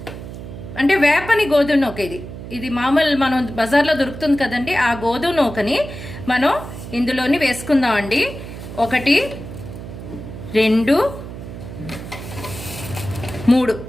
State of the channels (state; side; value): noise; right; hum, 11 dB below the sound